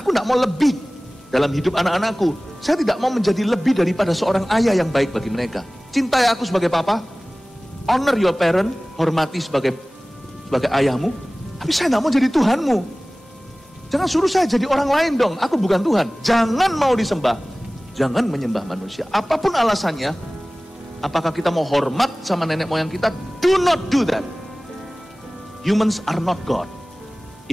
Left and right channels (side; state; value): both; normal; correlation 0.98